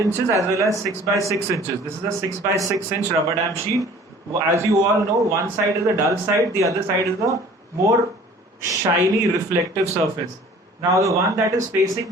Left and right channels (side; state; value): both; normal; correlation 0.49